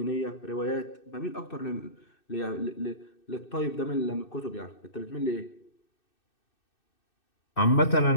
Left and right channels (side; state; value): right; late; 2.6 ms